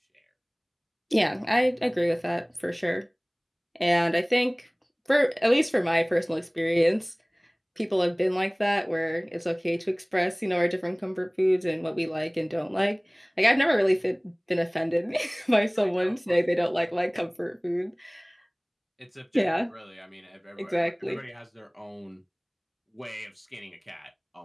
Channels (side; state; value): both; identical; correlation 1.00